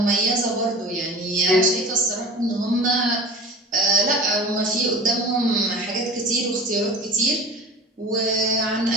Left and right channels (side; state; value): both; normal; correlation 0.37